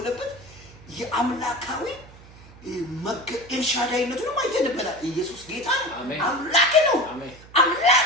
የአምላካዊ ኤልሻዳይነቱን አይተንበታል። ኢየሱስ ጌታ ነው። አምላክ ነው።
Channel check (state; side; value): noise; right; hum, 21 dB below the sound